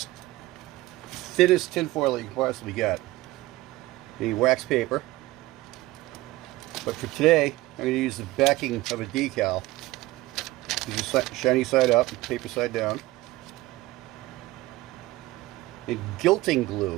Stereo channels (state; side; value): quieter; left; 18.4 dB